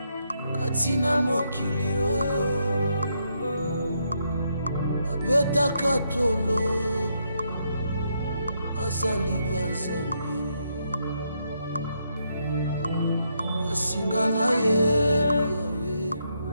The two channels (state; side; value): inverted; both; correlation -0.78